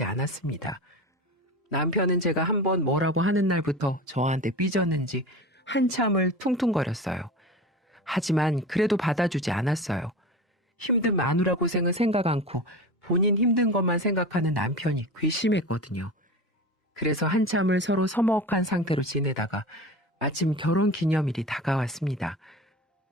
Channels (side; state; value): both; normal; correlation 0.31